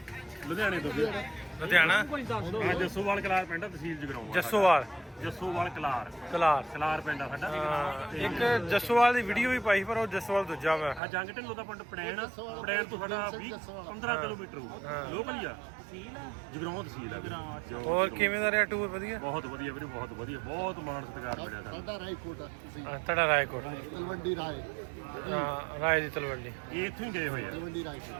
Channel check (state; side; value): drops out; left; at 11.0 s